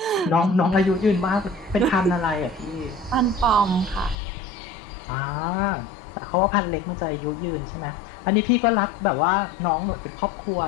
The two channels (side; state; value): right; drops out; at 4.2 s